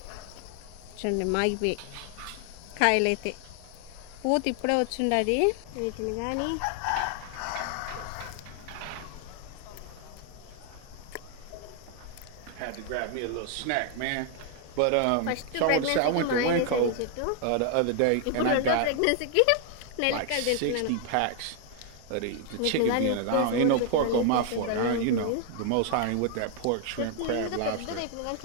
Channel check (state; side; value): different; both; correlation 0.00